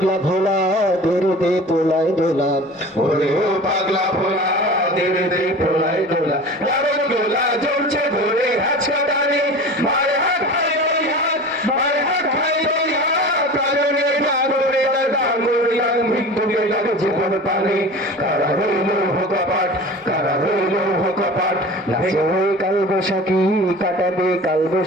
ভোলা দেরে দে পোলায় দোলা ওরে ও পাগলা ভোলা দেরে দে পোলায় দোলা রাবণ গোলা জ্বলছে ঘুরে হাঁচকা টানে মারে হাত ভাই ওই হাত মারে হাত ভাই ওই হাত প্রাণের ডাঙরে ডাঙরে মৃত্যুকে ডাকে জীবন পানে কারা রইল কপাট কারা রইল কপাট নাচে ওই কাল বৈশাখী কাটাবে কাল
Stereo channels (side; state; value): both; normal; correlation 0.37